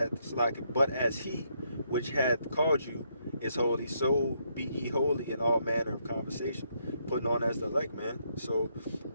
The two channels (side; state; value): both; inverted; correlation -0.75